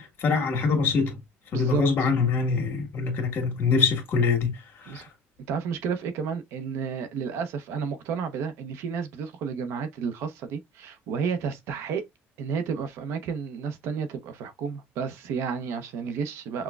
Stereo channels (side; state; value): both; normal; correlation 0.40